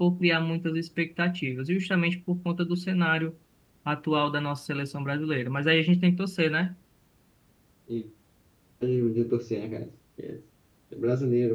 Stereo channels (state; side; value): identical; both; correlation 1.00